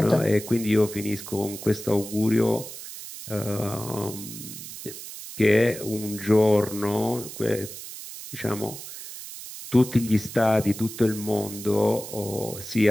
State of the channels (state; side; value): noise; right; hiss, 12 dB below the sound